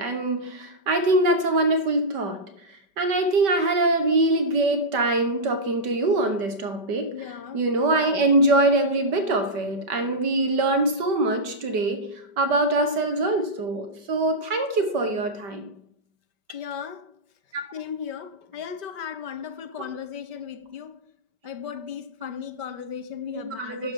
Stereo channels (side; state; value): left; late; 5.2 ms